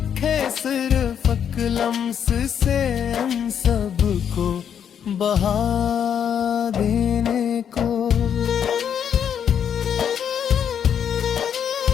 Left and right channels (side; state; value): right; quieter; 8.4 dB